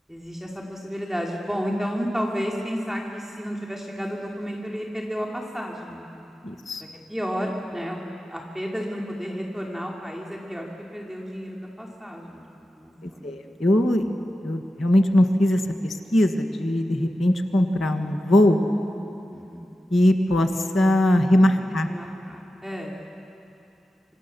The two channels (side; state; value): both; normal; correlation 0.92